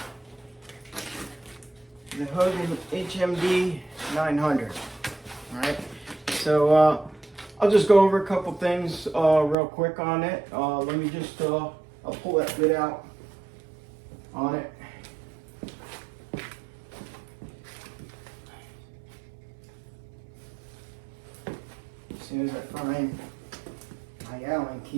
The Hougen HMD 900. All right. So I'll just go over a couple things real quick on it. Let me just I'll pull that bit out on it. As soon as I find my Allen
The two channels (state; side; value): drops out; left; at 9.6 s